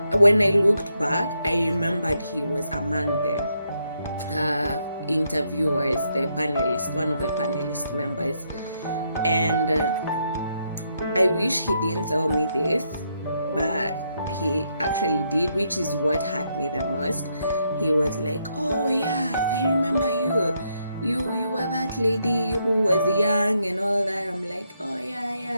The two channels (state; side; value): inverted; both; correlation -0.78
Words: when I looked back, I remembered he was among the interviewers, the panelist, one of the panelist members. And I wish he didn't tell me this, but he actually did, which is what hurt me the most. He was like, oh yeah, I remember you. You were that lady who was young and all that. I'm like, oh